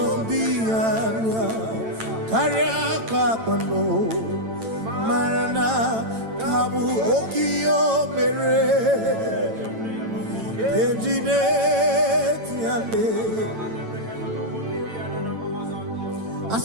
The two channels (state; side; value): late; left; 9.0 ms